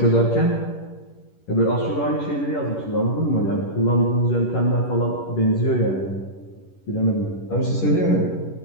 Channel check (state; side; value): late; right; 11 ms